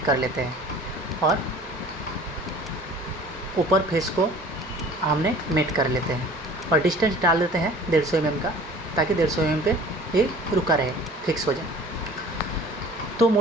कर लेते हैं और ऊपर फेस को हमने मेट कर लेते हैं और डिस्टेंस डाल देते हैं 150 mm का, ताकि 150 mm पे ये रुका रहे, फिक्स हो जाए। तो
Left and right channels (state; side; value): normal; both; correlation 0.46